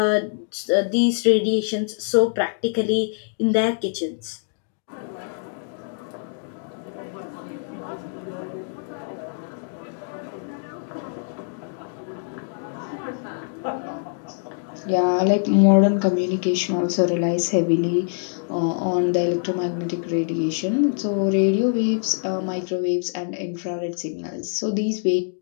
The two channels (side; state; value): right; silent; digital silence